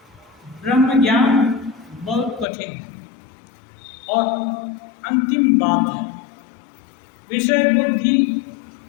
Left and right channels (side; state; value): right; drops out; at 2.5 s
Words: ब्रह्म ज्ञान बहुत कठिन है और अंतिम बात है। विषय बुद्धि